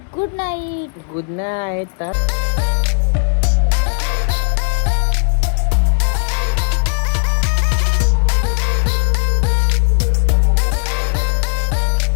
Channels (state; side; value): silent; right; 69 dB below the other